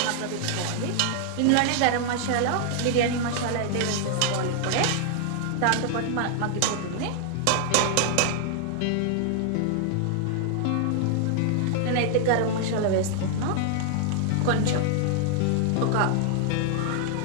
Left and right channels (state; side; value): different; both; correlation 0.00